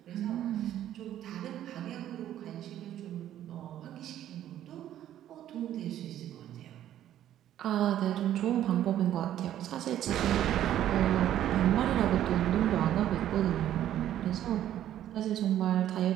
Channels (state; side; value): quieter; left; 11.7 dB